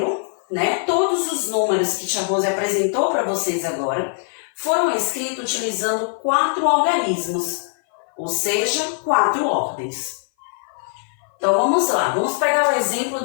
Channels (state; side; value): silent; right; 57 dB below the other